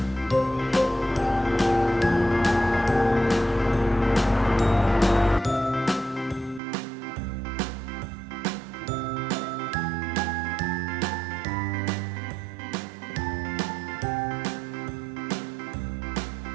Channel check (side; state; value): left; drops out; at 6.6 s